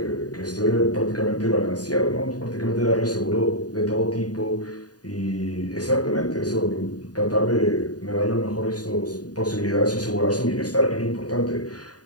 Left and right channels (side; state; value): right; late; 0.68 ms